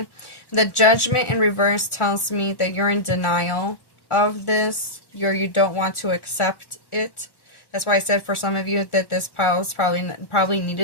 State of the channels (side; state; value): right; late; 1.4 ms